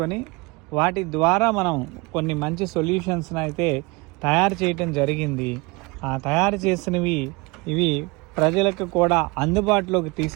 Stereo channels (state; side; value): quieter; left; 26.2 dB